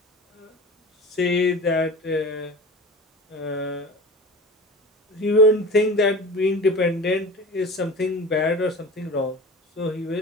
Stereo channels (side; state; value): both; normal; correlation 0.35